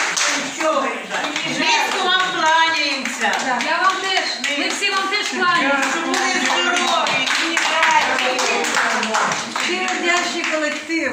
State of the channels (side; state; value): both; identical; correlation 1.00